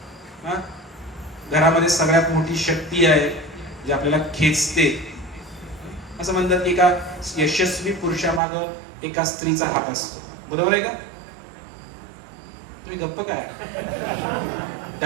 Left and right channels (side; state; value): left; drops out; at 8.4 s